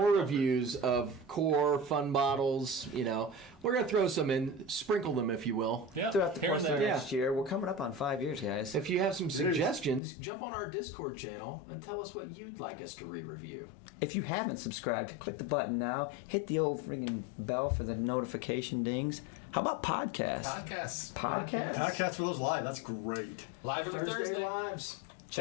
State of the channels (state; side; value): drops out; right; at 10.0 s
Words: reviews of core fun bottles. You know, we're gonna throw some in, sprinkle them, if you will. Yeah. Throughout the Here course and of there. next year, we're coming up on 5 years, guys. If you have some suggestions, jump on our Discord channel and tell us what you'd like us to re-review. If you haven't subscribed, click the button now. Hit the old freaking bell for the notification dings. How about podcasts? Podcasts. Podcast for those live. That's great. Live every Thursday Thursday. lives.